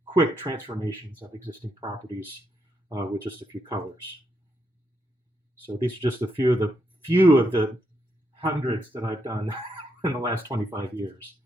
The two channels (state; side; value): normal; both; correlation 0.80